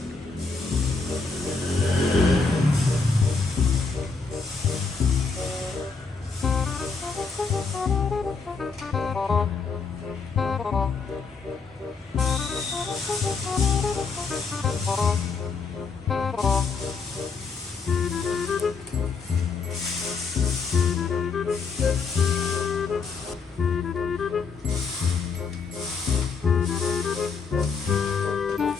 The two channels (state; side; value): quieter; right; 4.7 dB